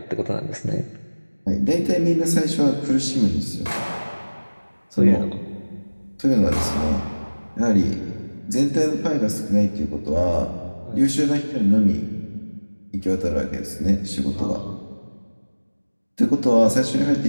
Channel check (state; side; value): inverted; both; correlation -1.00